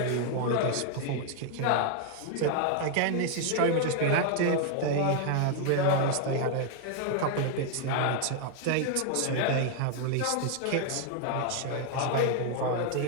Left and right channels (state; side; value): different; both; correlation 0.00